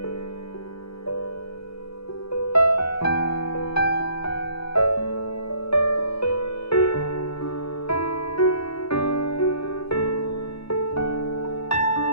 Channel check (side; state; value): right; late; 0.77 ms